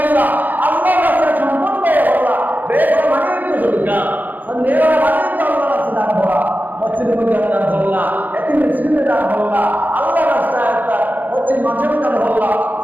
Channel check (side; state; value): left; late; 0.084 ms